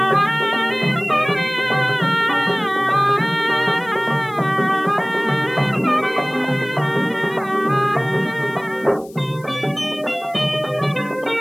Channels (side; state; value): left; noise; hiss, 25 dB below the sound